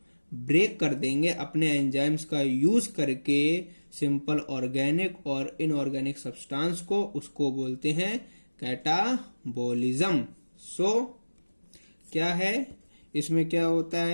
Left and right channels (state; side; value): inverted; both; correlation -1.00